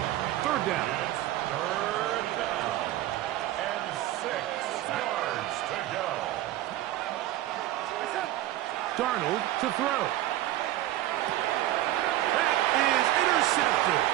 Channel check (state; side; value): quieter; left; 14.5 dB